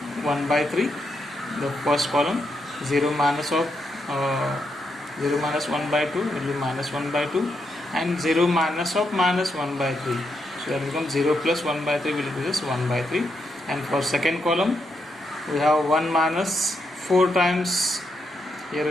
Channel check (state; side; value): normal; both; correlation 0.81